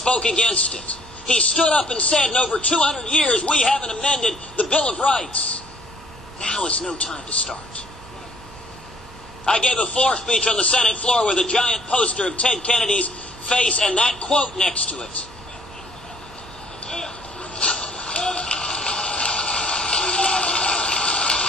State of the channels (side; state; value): both; normal; correlation 0.60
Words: against it. He stood up and said, in over 200 years, we haven't amended the Bill of Rights. Now is no time to start. I gave a floor speech on the Senate floor with a giant poster of Ted Kennedy's face and that quote next to it.